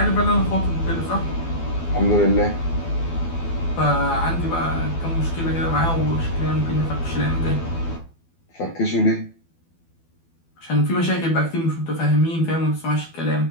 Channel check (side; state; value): right; late; 12 ms